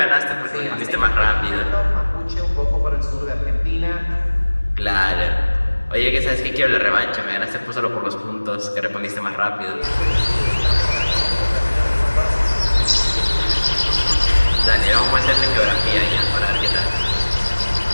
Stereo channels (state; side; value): inverted; both; correlation -1.00